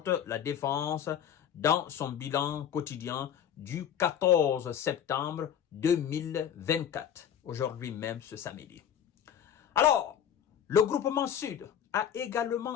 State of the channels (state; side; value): quieter; right; 9.1 dB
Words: la défense dans son bilan quotidien du 14 septembre 2024, aujourd'hui même ce samedi. Alors, le groupement Sud a